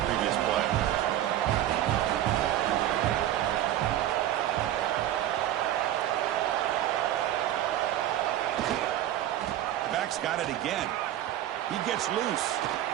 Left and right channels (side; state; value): left; quieter; 12.6 dB